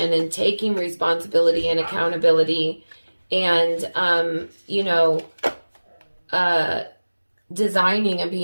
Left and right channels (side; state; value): both; inverted; correlation -1.00